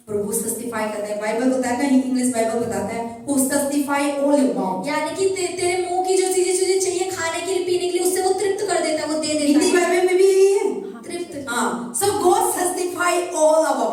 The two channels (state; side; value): identical; both; correlation 1.00